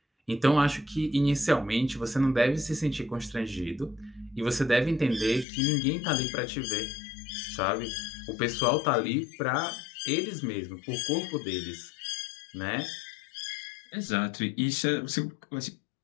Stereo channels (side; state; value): right; drops out; at 5.5 s